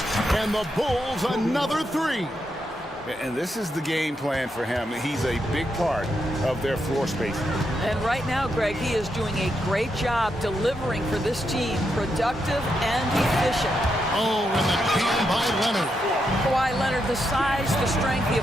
And the Bulls another 3. And this is the game plan for him. He's a big part of their floor spacing. And right now, Greg, he is doing a great job delivering for this team. Productive and efficient. Oh, and the jam by Leonard. Kawhi Leonard, the size, the strength,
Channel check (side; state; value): both; normal; correlation 0.82